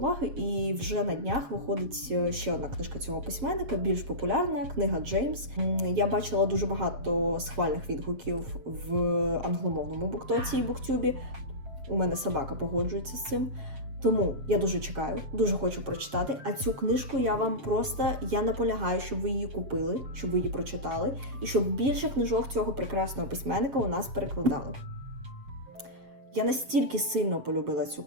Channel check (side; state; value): left; late; 7.5 ms